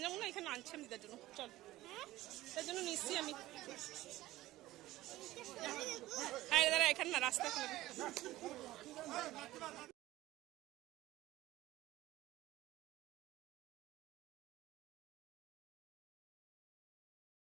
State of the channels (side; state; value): left; quieter; 16.5 dB